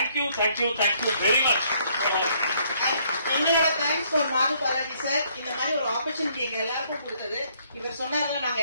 you very much. எங்களோட தேங்க்ஸ் ஃபார் மாது பாலாஜி சார். இந்த மாதிரி ஒரு ஆப்பர்ச்சுனிட்டி எங்க எல்லாருக்கும் கொடுத்தது. இவர் சொன்னாங்க, நாங்க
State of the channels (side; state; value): both; inverted; correlation -0.67